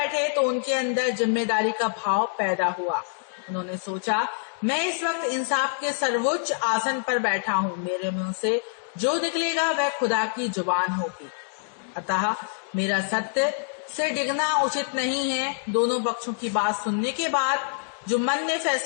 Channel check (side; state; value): right; silent; digital silence